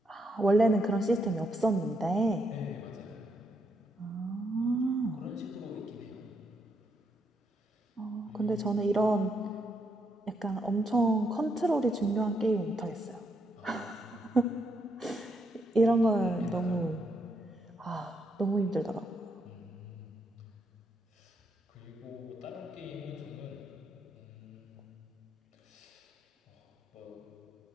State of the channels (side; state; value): both; normal; correlation 0.78